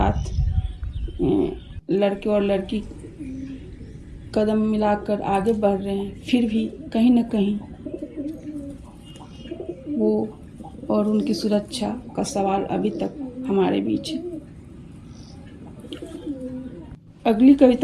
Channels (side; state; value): both; identical; correlation 1.00